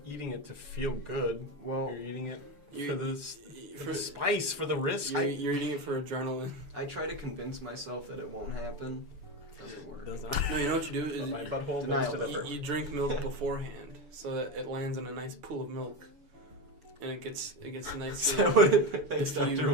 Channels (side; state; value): left; late; 6.9 ms